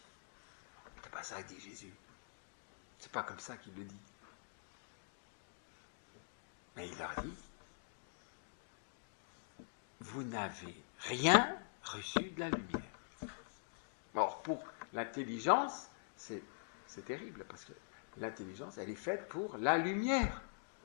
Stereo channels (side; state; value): right; silent; digital silence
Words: C'est pas ça que dit Jésus. C'est pas comme ça qu'il le dit. Mais il leur dit, vous n'avez rien reçu de la lumière. Or, pour l'intelligence, c'est terrible, parce que l'intelligence, elle est faite pour la lumière.